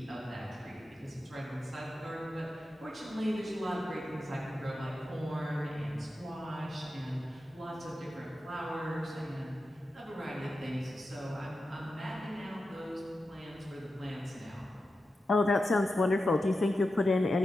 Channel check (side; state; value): both; normal; correlation 0.91